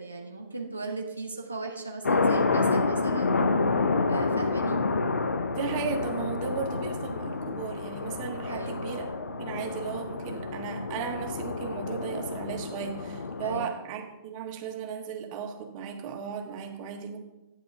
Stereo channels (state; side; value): inverted; both; correlation -0.59